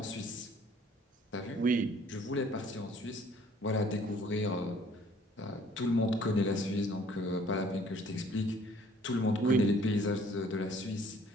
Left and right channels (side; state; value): both; normal; correlation 0.57